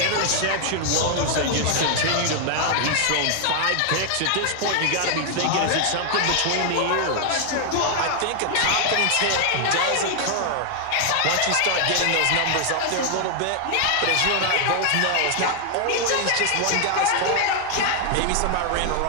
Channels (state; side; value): different; both; correlation 0.00